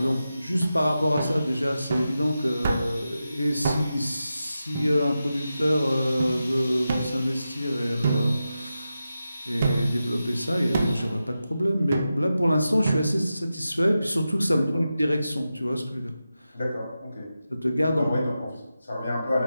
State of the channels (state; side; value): inverted; both; correlation -0.91